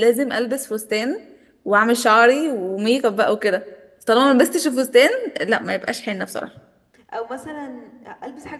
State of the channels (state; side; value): identical; both; correlation 1.00